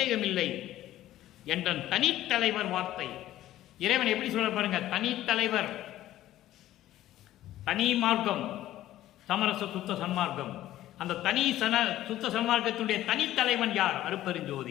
இல்லை என்ற தனித்தலைவர் வார்த்தை. இறைவன் எப்படி சொல்ற பாருங்க, தனித்தலைவர். தனி மார்க்கம் சமரச சுத்த சன்மார்க்கம். அந்த தனி சுத்த சன்மார்க்கத்துடைய தனித்தலைவன் யார்?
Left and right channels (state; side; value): quieter; right; 14.0 dB